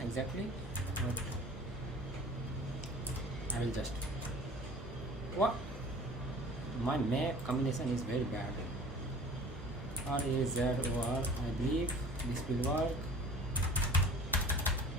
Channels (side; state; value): both; normal; correlation 0.43